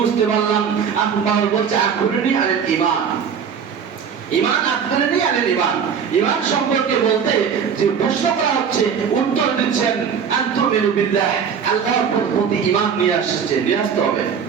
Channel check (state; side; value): quieter; left; 7.0 dB